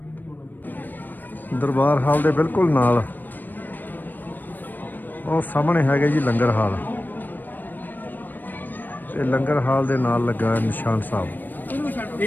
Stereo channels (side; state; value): right; late; 0.090 ms